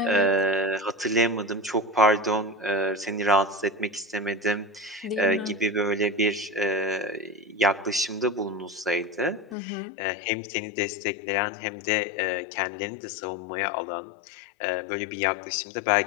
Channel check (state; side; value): drops out; right; at 9.6 s